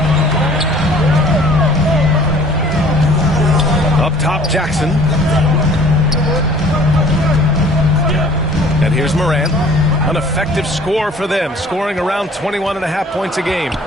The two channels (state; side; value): normal; both; correlation 0.52